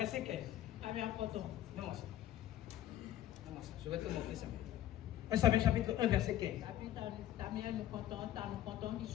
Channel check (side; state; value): right; quieter; 12.8 dB